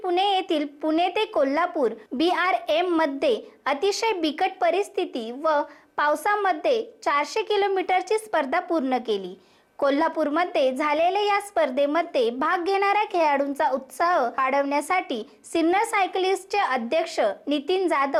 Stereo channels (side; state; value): both; identical; correlation 1.00